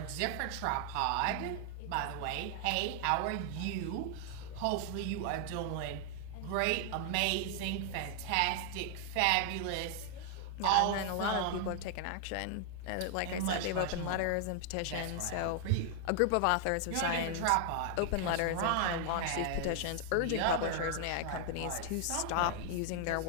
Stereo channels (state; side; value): different; both; correlation 0.00